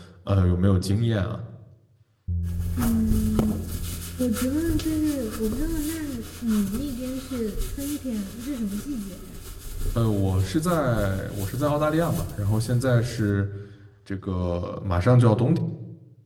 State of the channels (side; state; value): both; identical; correlation 1.00